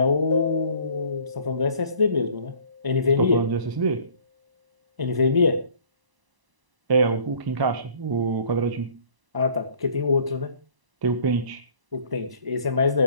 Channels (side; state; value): left; late; 1.0 ms